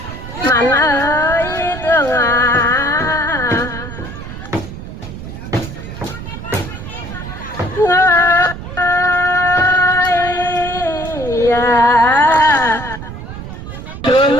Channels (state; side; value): noise; right; rumble, 10 dB below the sound